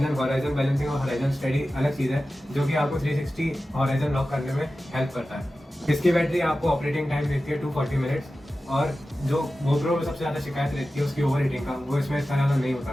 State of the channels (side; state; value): both; normal; correlation 0.94